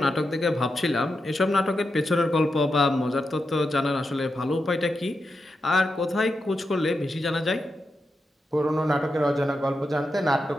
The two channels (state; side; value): normal; both; correlation 0.87